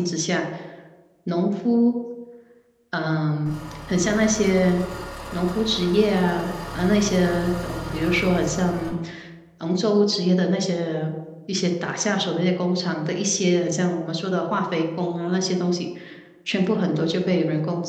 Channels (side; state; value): both; identical; correlation 1.00